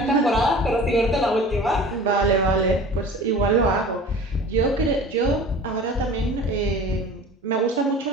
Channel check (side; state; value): both; normal; correlation 0.41